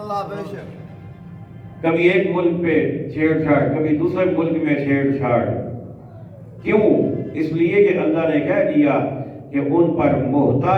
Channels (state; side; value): identical; both; correlation 1.00